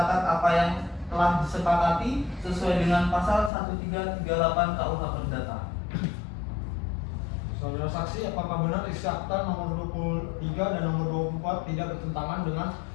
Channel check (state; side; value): drops out; right; at 3.5 s